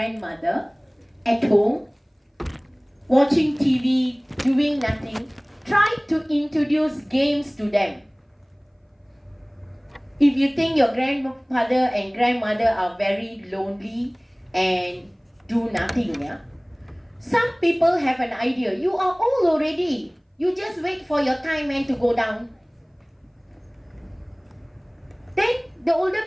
at home, watching TV, doing nothing, try to introduce games to them. If you think your grandfather and grandmother are very lonely and do nothing, yeah, some people have an idea. You are old already. You just wait for your time and to go down. Then the older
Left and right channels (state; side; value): identical; both; correlation 1.00